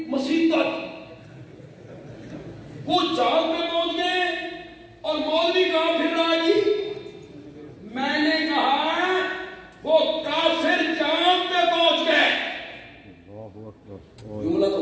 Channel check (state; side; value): identical; both; correlation 1.00